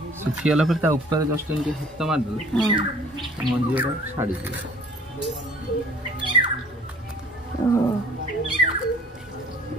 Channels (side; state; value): both; normal; correlation 0.53